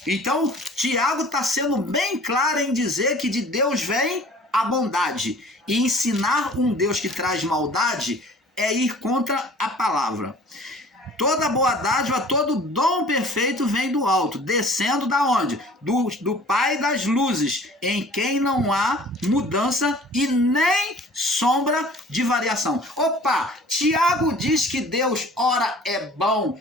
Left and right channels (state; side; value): normal; both; correlation 0.48